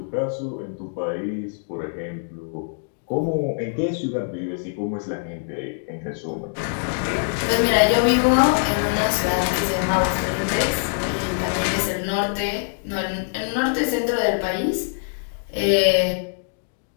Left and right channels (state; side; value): silent; right; digital silence